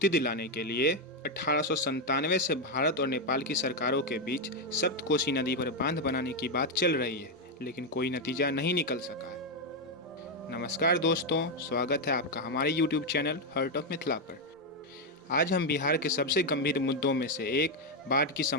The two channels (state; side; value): normal; both; correlation 0.04